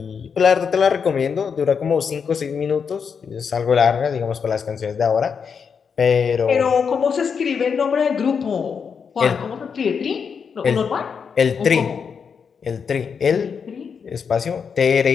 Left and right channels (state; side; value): quieter; right; 6.3 dB